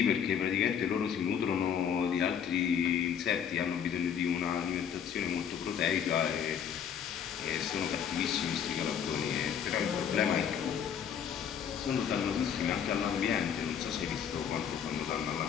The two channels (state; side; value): quieter; right; 8.1 dB